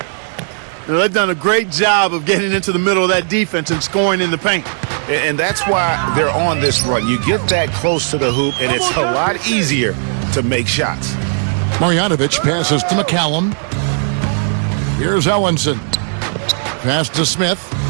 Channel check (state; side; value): silent; left; digital silence